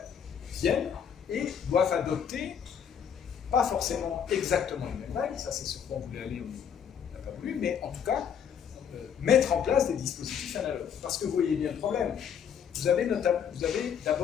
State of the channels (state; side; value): quieter; right; 8.0 dB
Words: viennent et doivent adopter, pas forcément exactement les mêmes règles, ça c'est ce qu'on voulait aller, on n'a pas voulu, mais en tout cas, mettre en place des dispositifs analogues. Parce que vous voyez bien le problème. Vous avez